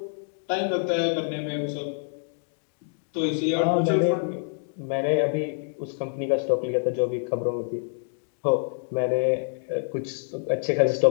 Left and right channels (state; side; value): silent; right; digital silence